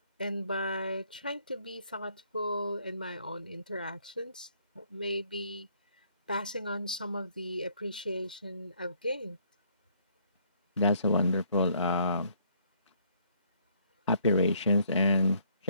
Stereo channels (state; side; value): inverted; both; correlation -0.66